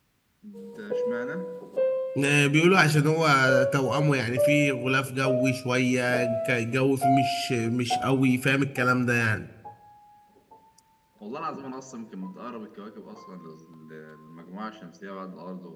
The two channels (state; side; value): identical; both; correlation 1.00